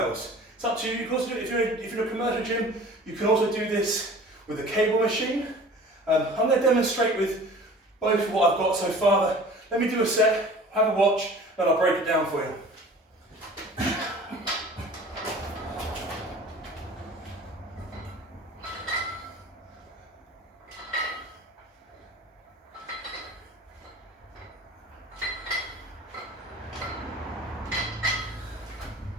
It's up to you. You can also do it if you're in a commercial gym. You can also do this with a cable machine. I'm going to demonstrate with both what I've got so far. Let me do a set, have a watch, and I'll break it down for you.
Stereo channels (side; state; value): both; normal; correlation 0.44